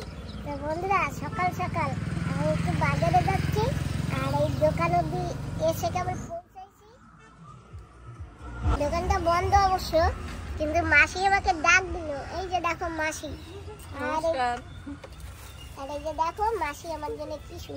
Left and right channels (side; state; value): both; identical; correlation 1.00